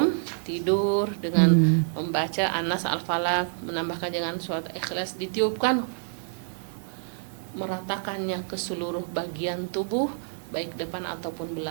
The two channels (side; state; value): left; silent; digital silence